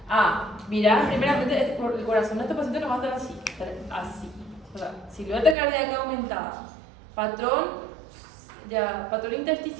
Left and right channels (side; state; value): left; drops out; at 5.6 s